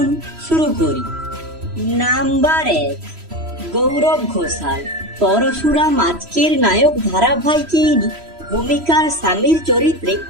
শুরু করি। নাম্বার 1, গৌরব ঘোষাল। পরশুরাম আজকের নায়ক ধারাবাহিকে ইনি ভূমিকার স্বামীর চরিত্রে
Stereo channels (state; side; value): late; left; 3.0 ms